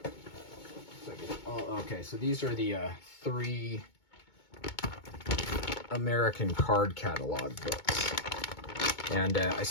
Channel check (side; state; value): right; late; 2.2 ms